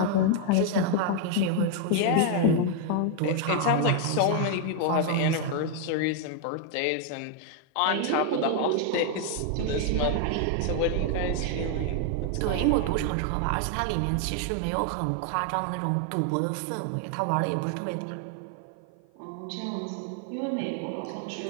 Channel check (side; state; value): both; different; correlation 0.00